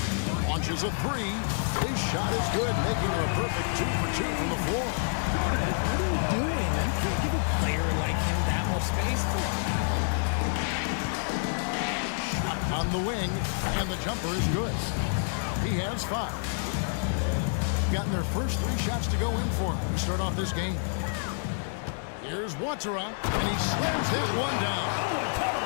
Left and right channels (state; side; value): silent; right; digital silence